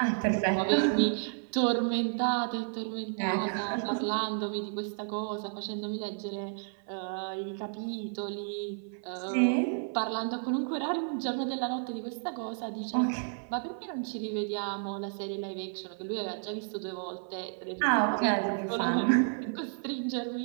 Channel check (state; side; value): silent; left; 55 dB below the other